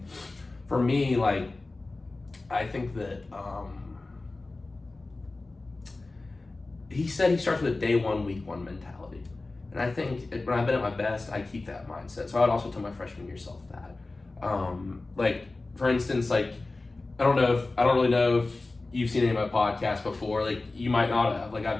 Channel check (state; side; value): quieter; right; 3.3 dB